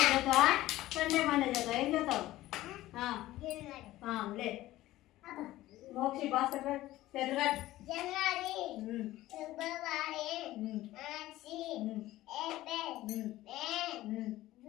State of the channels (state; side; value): quieter; right; 16.0 dB